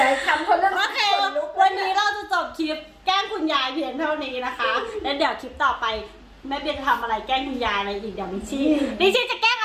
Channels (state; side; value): identical; both; correlation 1.00